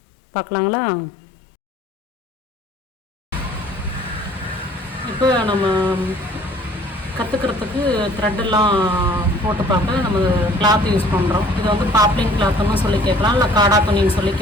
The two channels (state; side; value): normal; both; correlation 0.54